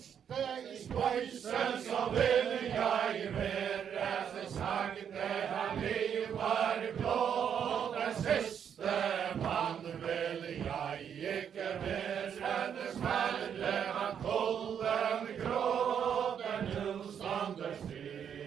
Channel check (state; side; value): quieter; left; 8.2 dB